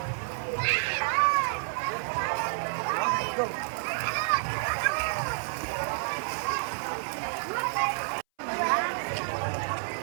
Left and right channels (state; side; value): silent; left; 58 dB below the other